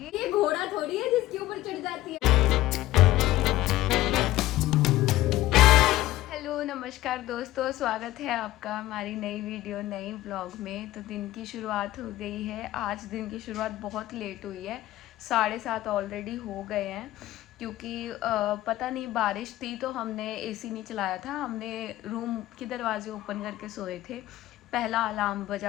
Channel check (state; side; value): quieter; right; 15.9 dB